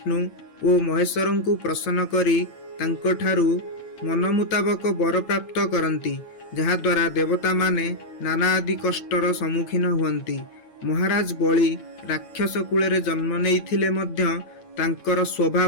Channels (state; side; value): late; right; 8.8 ms